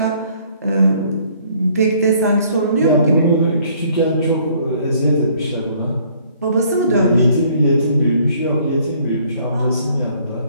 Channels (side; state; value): both; inverted; correlation -0.61